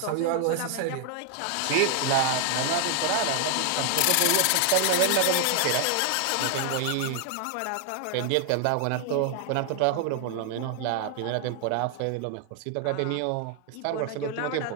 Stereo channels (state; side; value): different; both; correlation 0.00